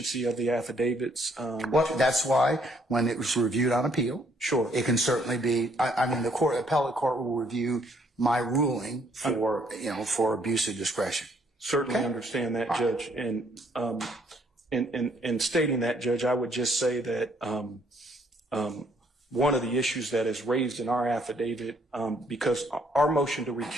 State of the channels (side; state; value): both; normal; correlation 0.67